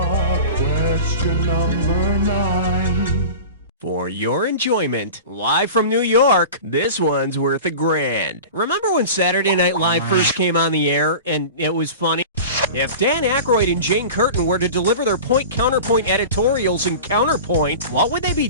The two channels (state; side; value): inverted; both; correlation -0.35